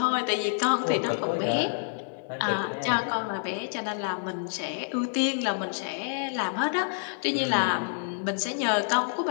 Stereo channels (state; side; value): silent; right; digital silence